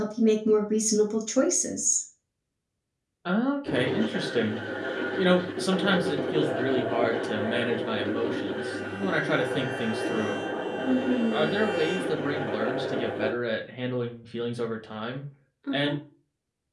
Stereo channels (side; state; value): both; identical; correlation 1.00